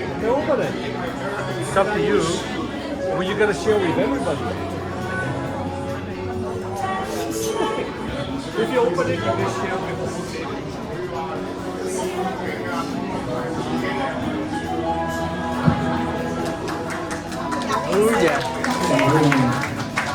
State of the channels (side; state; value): both; identical; correlation 1.00